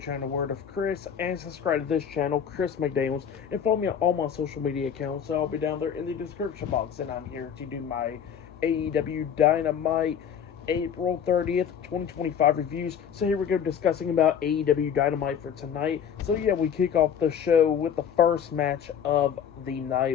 Word of Chris, and subscribe to this channel, Chris McDaniels, and follow me on all my social media accounts. I'll be down there in the description box, and I'm here to do my AEW Dynamite April 30th, 2025 reviews. So here we go, discussing about AEW Dynamite for tonight. So yeah, we kick off the show with the first match of the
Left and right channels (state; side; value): quieter; right; 8.1 dB